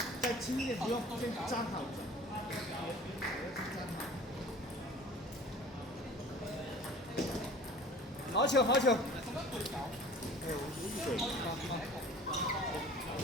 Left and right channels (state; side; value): normal; both; correlation 0.44